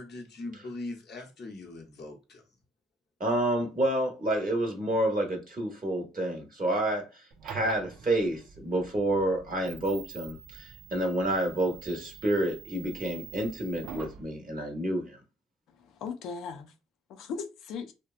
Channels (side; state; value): both; normal; correlation 0.60